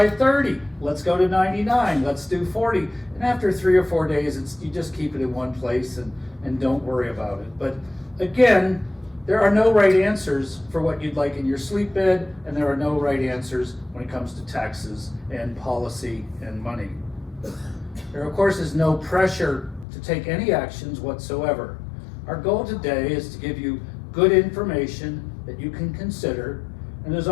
30, let's go to 99, let's do 40, and after 3 or 4 days, you just keep it in one place and don't worry about it. But again, There are no right answers for what you'd like in your sleep bed, and there are no right answers when it comes to taxes and policy and money. There, of course, is no pressure to take any actions whatsoever. Our goal today is to give you good information that you can consider, and as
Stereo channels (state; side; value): drops out; right; at 19.9 s